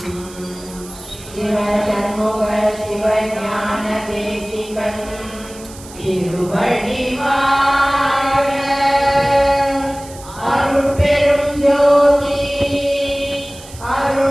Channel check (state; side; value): noise; right; hiss, 18 dB below the sound